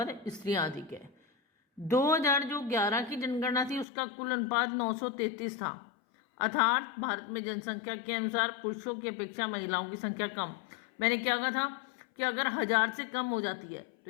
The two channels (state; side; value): drops out; right; at 3.9 s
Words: स्त्रियाँ अधिक हैं। 2011 की जनगणना थी उसका कुल अनुपात 933 था, अर्थात भारत में जनसंख्या के अनुसार पुरुषों की अपेक्षा महिलाओं की संख्या कम। मैंने क्या कहा था कि अगर 1000 से कम हो जाती है तो